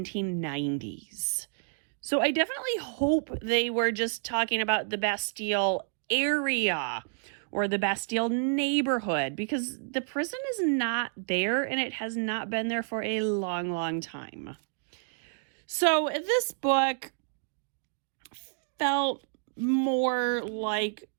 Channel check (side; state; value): left; silent; digital silence